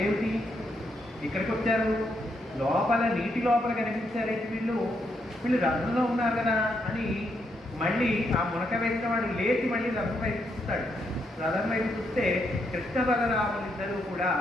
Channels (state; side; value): normal; both; correlation 0.78